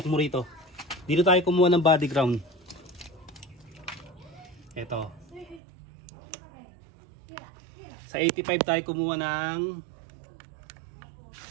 mo rito. Dito tayo kumuha ng body ground. Ito. Sa 85 tayo kumuha ng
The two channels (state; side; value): drops out; left; at 5.6 s